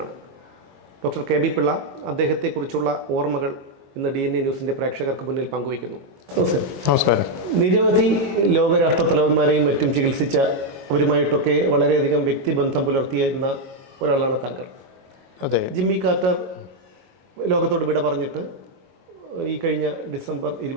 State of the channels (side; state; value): left; late; 22 ms